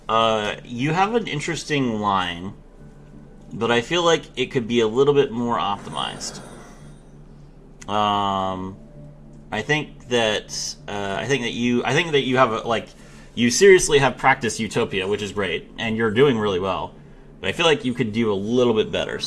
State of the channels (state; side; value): identical; both; correlation 1.00